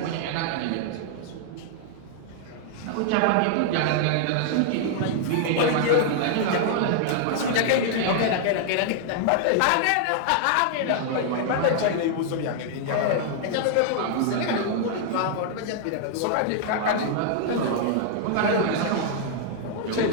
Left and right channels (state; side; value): different; both; correlation -0.01